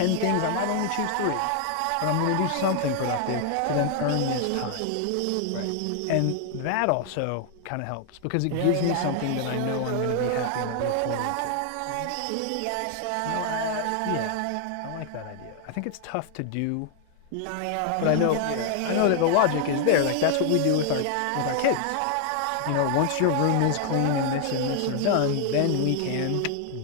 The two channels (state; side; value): different; both; correlation 0.00